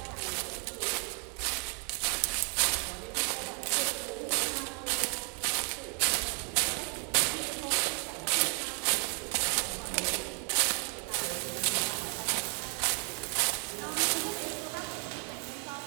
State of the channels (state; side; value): quieter; left; 34.2 dB